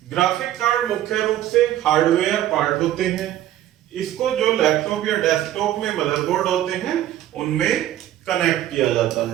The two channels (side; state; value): left; quieter; 12.8 dB